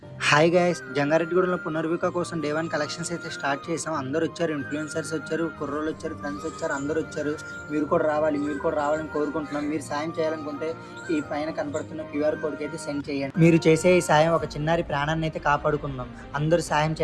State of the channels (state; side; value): identical; both; correlation 1.00